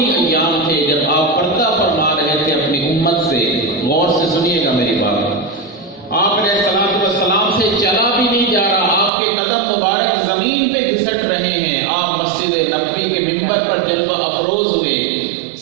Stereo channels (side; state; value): left; drops out; at 9.1 s